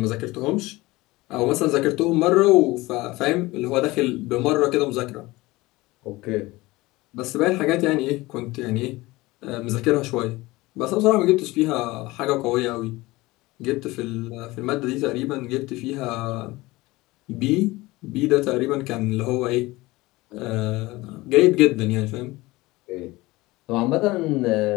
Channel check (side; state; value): right; quieter; 20.5 dB